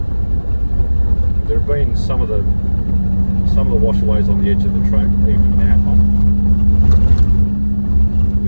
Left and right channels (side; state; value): both; inverted; correlation -1.00